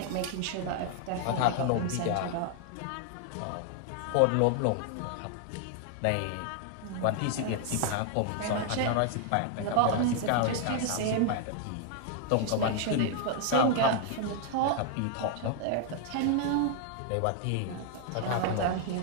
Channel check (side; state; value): both; different; correlation 0.00